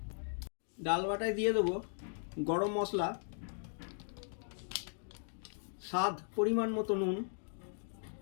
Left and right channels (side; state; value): right; silent; digital silence